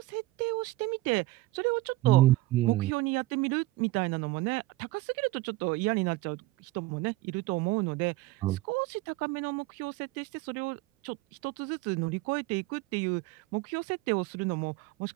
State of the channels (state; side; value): quieter; left; 18.9 dB